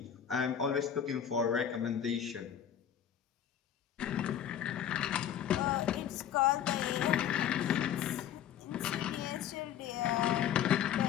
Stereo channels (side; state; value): right; quieter; 9.7 dB